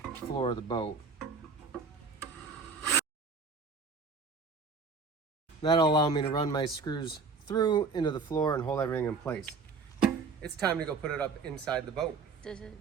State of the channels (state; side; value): quieter; left; 4.7 dB